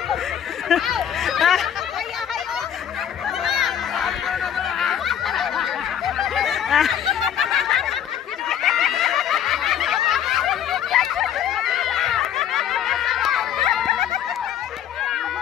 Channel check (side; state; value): right; quieter; 9.6 dB